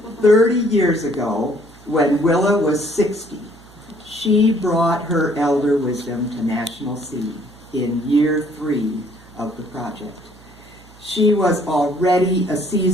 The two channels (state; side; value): noise; right; hum, 24 dB below the sound